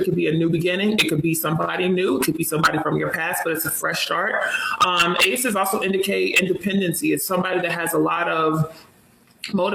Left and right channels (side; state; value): both; identical; correlation 1.00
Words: could be a new beginning. It could be somebody new. It could be somebody from your past, but it's a fresh start. Aces also indicate independency. It's somebody that has a lot of